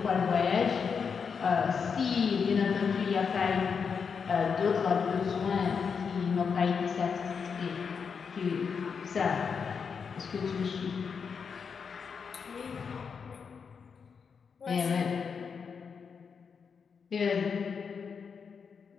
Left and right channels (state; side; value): quieter; right; 6.1 dB